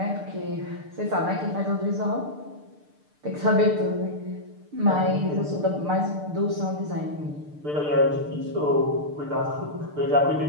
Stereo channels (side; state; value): left; late; 6.7 ms